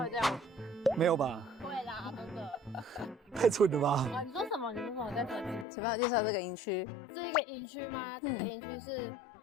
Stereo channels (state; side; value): drops out; right; at 5.7 s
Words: 会这样吗？没有吧？会啦，真的。太蠢了吧！啊，你说什么？你说什么？再说一次。请帮我介绍这个营区。这个营区吗？这个营区是